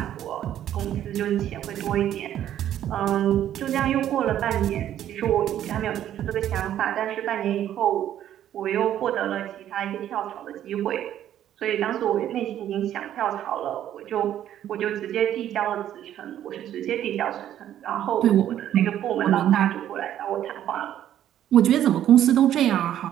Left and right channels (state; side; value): quieter; left; 11.3 dB